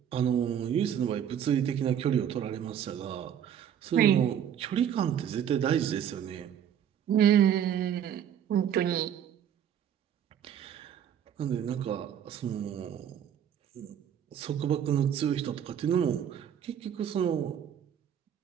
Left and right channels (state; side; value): quieter; left; 9.3 dB